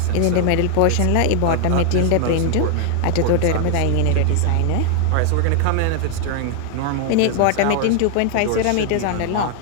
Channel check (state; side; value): different; both; correlation 0.00